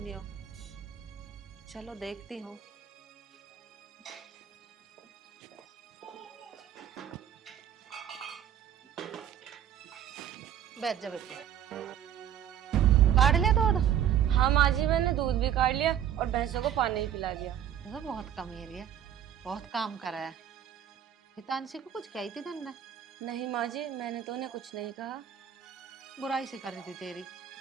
चलो देखती हूँ। बैठ जा बेटी। काट लिया दूध? हाँ माँ जी, मैंने दूध भी काट लिया और भैंसों को पानी भी पिला दिया। तो बहुत कमीरी है, बहुत काम करा है। हितांशी को कुछ कही थी तन्ने? नहीं माँ जी, मैंने तो उन्हें कुछ नहीं कहा। बुराई सी कर रही थी तेरी?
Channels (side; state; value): left; quieter; 9.9 dB